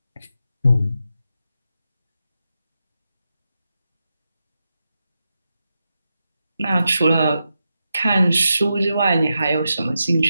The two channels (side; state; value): both; inverted; correlation -0.88